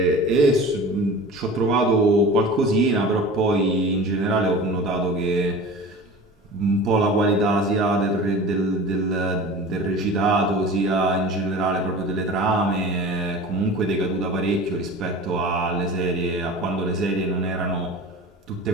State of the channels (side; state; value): both; normal; correlation 0.37